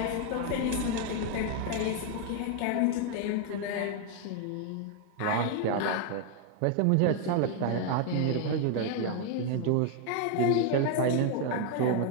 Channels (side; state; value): both; different; correlation 0.01